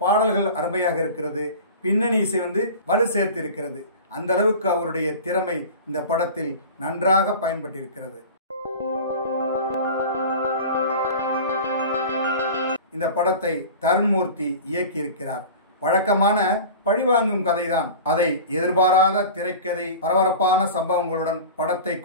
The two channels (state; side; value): inverted; both; correlation -0.36